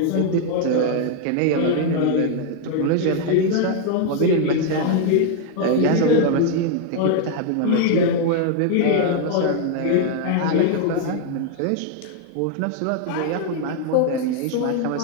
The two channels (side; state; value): both; different; correlation 0.00